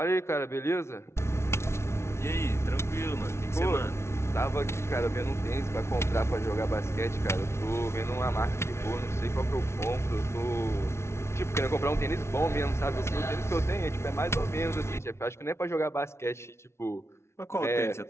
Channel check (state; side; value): late; right; 0.13 ms